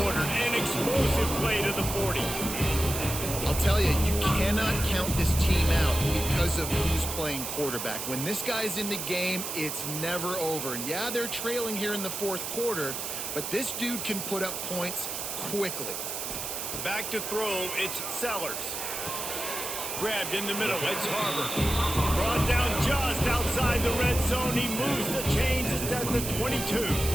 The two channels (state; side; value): noise; right; hiss, 5 dB below the sound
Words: ordered, an explosive play to the 40. I'll tell you, you cannot count this team out because of who's playing quarterback. When this guy's in the game, it's never over. And yeah, they're trailing here in the fourth quarter, but this dude can put up points quickly. Back to throw, it's Sellers. Grabbed in the middle, it's Harbor. Brought down just outside the red zone. He moves the chains, it's at the 22.